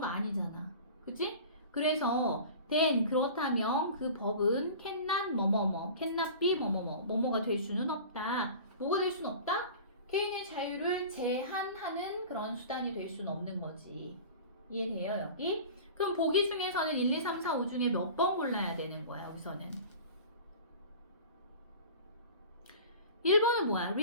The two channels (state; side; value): inverted; both; correlation -0.38